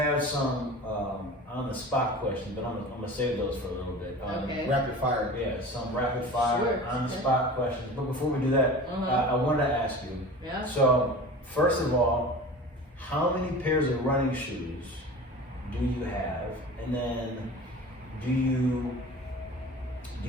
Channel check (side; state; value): both; normal; correlation 0.37